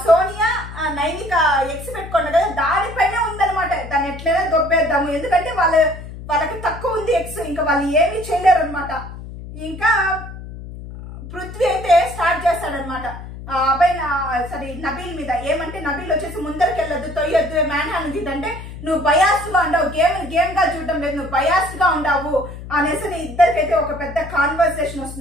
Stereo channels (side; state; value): left; noise; hum, 12 dB below the sound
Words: సోనియా నైనిక ఎక్స్ పెట్టుకోండి కదా దానిపైనే ఉందనమాట. దాన్ని ఎట్లయినా దొబ్బేద్దాము, ఎందుకంటే వాళ్ళకి తక్కువ ఉంది ఎక్స్, ఇంకా వాళ్ళు ఏమీ చేయలేరు అనమాట. ఇంకా పృథ్వీ అయితే స్టార్ట్ చేస్తాడనమాట అబ్బాయి సారీ నబీల్ మీద. ఏమంటే నబీల్ వచ్చేసి ముందరికి వెళ్ళొద్దు, తొయ్యొద్దు, మ్యాన్ హ్యాండ్ అంటే నువ్వు బయాస్ గా ఉండవు, గేమ్ గా చూడటం లేదు, నువ్వు బయాస్ గా ఉండవు అనేసి ఇద్దరికైతే ఒక పెద్ద కాన్వర్సేషన్